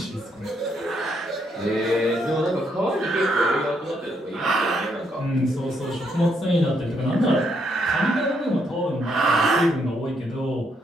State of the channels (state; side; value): normal; both; correlation 0.75